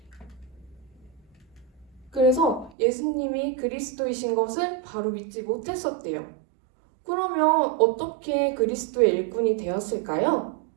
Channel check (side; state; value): left; drops out; at 2.7 s